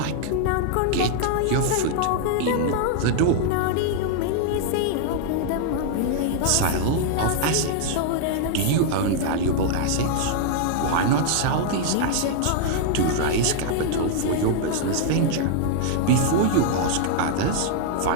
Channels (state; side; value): different; both; correlation -0.01